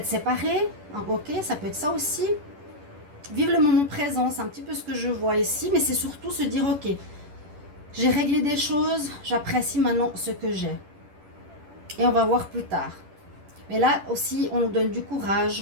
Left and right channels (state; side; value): late; left; 10 ms